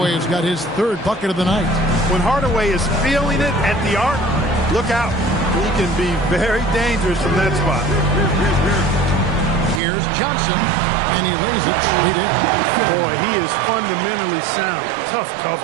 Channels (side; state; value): left; drops out; at 9.8 s